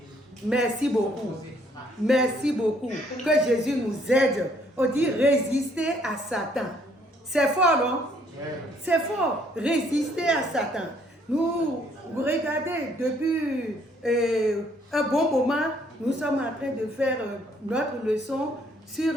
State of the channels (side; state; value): both; normal; correlation 0.65